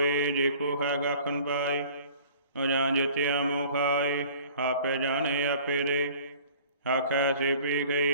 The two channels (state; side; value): inverted; both; correlation -0.49